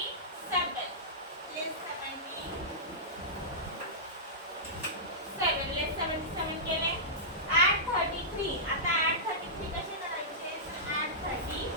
लेस 77 लेस 77 केले. ॲड 33. आता ॲड 33 कसे करायचे तर ॲड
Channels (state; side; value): normal; both; correlation -0.15